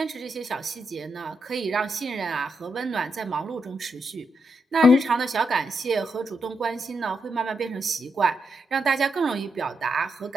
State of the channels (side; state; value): both; normal; correlation 0.82